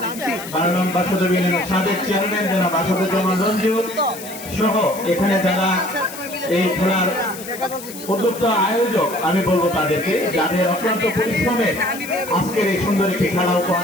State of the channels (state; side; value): noise; left; hiss, 13 dB below the sound